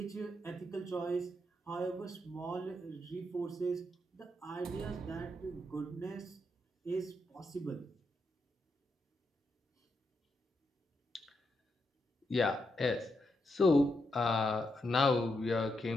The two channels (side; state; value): both; normal; correlation 0.82